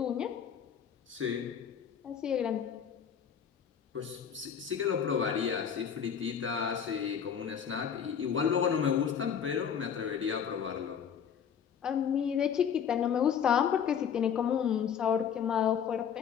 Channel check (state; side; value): quieter; right; 7.9 dB